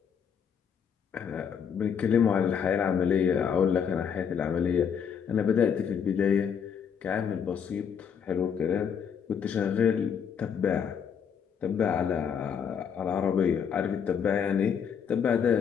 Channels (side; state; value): right; quieter; 7.4 dB